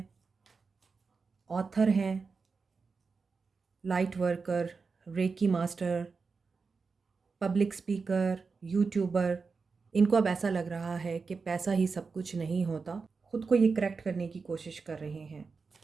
ऑथर हैं, light worker, reiki master, public speaker, YouTuber. इनको अब ऐसा लग रहा है कि पैसा ही सब कुछ नहीं होता। ख़ुद को ये करेक्ट करने की कोशिश कर रहे हैं।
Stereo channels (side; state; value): left; quieter; 4.7 dB